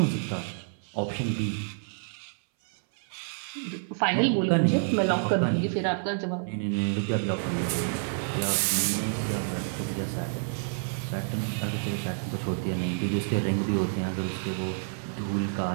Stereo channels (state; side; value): silent; left; 59 dB below the other